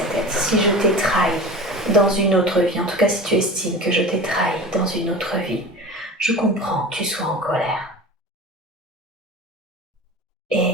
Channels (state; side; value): normal; both; correlation 0.34